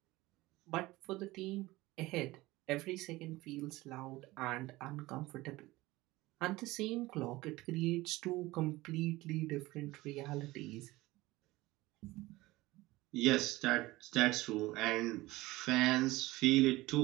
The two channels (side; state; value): left; quieter; 19.3 dB